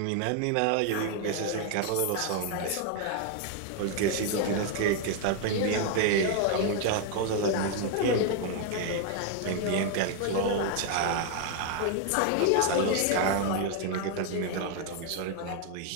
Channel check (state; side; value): different; both; correlation 0.00